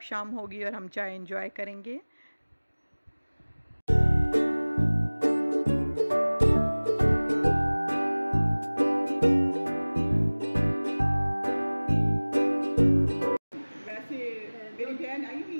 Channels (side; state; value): both; inverted; correlation -1.00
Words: शाम होगी और हम चाय एंजॉय करेंगे। वैसे